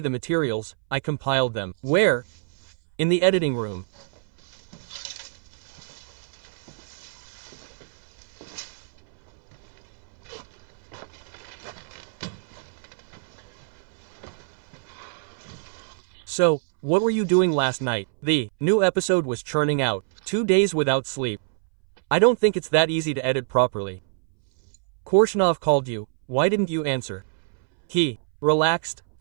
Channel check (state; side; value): silent; left; 61 dB below the other